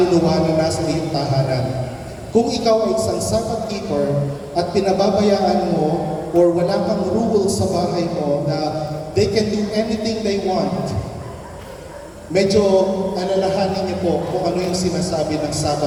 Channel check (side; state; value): both; identical; correlation 1.00